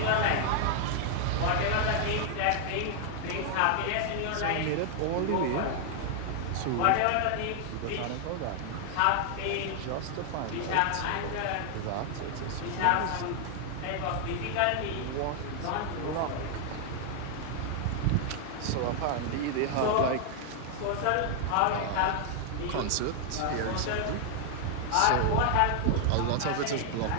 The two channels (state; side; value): different; both; correlation 0.00